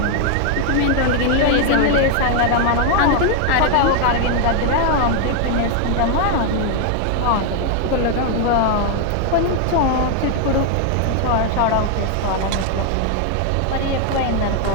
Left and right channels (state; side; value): different; both; correlation 0.00